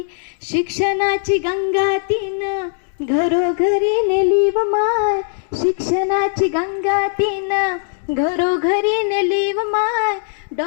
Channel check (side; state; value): right; silent; 61 dB below the other